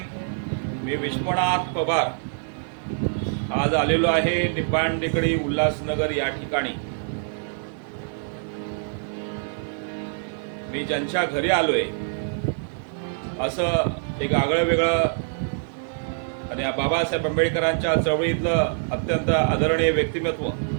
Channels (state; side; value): silent; left; digital silence